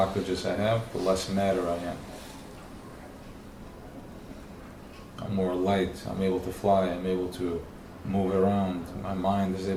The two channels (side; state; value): both; identical; correlation 1.00